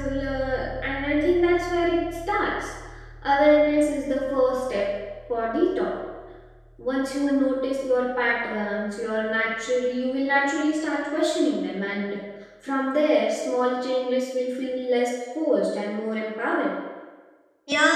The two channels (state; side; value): identical; both; correlation 1.00